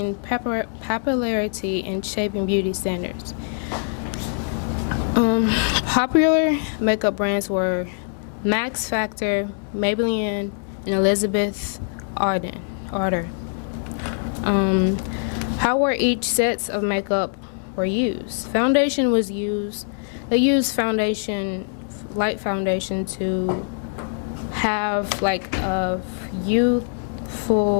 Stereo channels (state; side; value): silent; right; 63 dB below the other